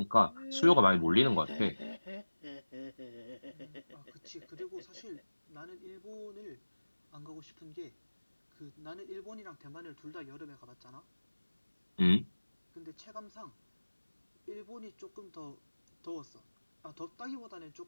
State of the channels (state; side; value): inverted; both; correlation -1.00